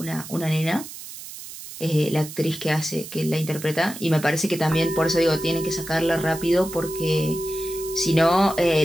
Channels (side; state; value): right; noise; hiss, 13 dB below the sound